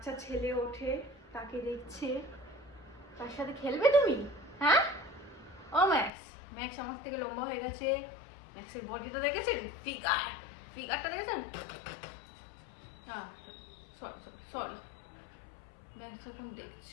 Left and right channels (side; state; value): right; drops out; at 6.1 s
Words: ছেলে ওঠে, তাকে দেখছে। তার সাথে খেলবে তুমি? হ্যাঁ? ও ম্যাক্স, ম্যাক্স আমার থেকে লম্বা হয়ে গেছে। ম্যাক্সের বডিটা দেখেছেন? ফিগারটা দেখেছেন? সরি। ম্যাক্স এখন